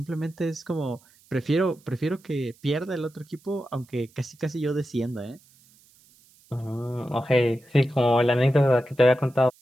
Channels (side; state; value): right; noise; hiss, 30 dB below the sound